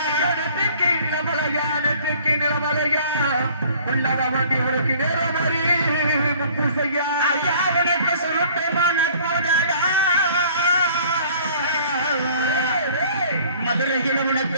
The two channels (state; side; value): inverted; both; correlation -0.53